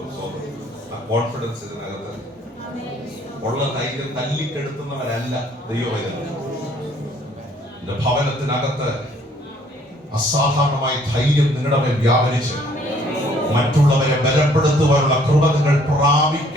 കോൺഫിഡൻസ് ഇതിനകത്ത് ഉള്ള ധൈര്യം തല്ലിക്കെടുത്തുന്നവരല്ല ദൈവവേദന. എന്റെ ഭവനത്തിനകത്ത് അസാധാരണമായ ധൈര്യം നിങ്ങളുടെ മേൽ വ്യാപരിച്ച് മറ്റുള്ളവരെ ബലപ്പെടുത്തുവാനുള്ള കൃപ നിങ്ങൾ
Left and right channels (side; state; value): both; normal; correlation 0.61